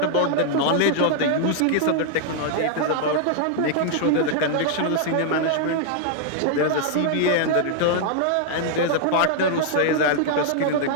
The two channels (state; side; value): different; both; correlation -0.01